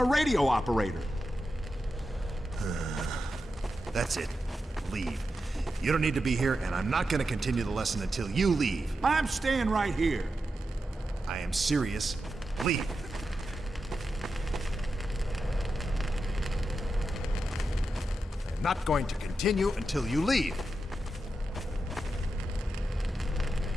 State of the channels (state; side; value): normal; both; correlation 0.89